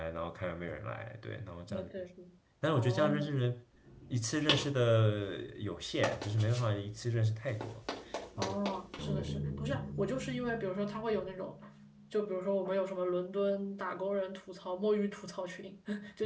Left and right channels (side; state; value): both; identical; correlation 1.00